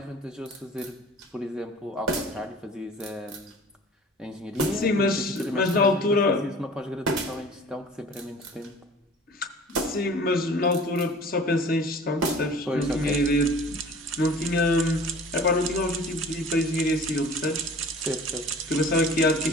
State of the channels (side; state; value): both; normal; correlation 0.44